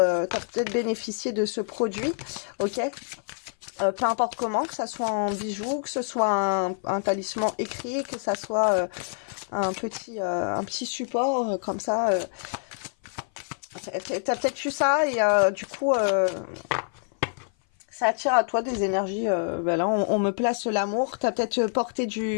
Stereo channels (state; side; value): silent; right; 57 dB below the other